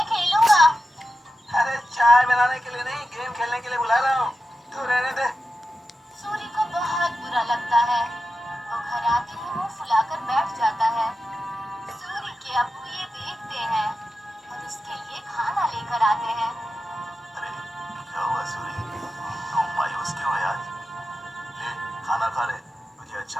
खेलूंगा। अरे चाय बनाने के लिए नहीं, गेम खेलने के लिए बुला रहा हूँ। तू रहने दे। सूरी को बहुत बुरा लगता है। वो घर आते ही मुंह फुलाकर बैठ जाता है। सूरी के अब्बू ये देखते हैं और उसके लिए खाना लेकर आते हैं। अरे क्या हुआ सूरी, तुम मायूस क्यों है आज? ले खाना खा ले, मुझे अच्छा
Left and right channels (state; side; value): normal; both; correlation 0.91